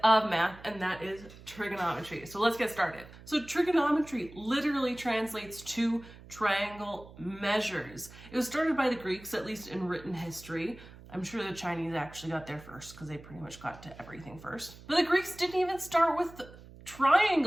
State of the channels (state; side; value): noise; right; hum, 19 dB below the sound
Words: of math, and that is trigonometry. So let's get started. So trigonometry literally translates to triangle measures. It was started by the Greeks, at least in written history. I'm sure the Chinese actually got there first because they pretty much got to everything first. But the Greeks didn't even start with